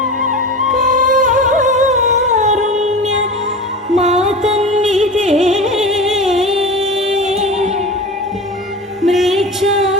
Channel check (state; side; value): normal; both; correlation 0.30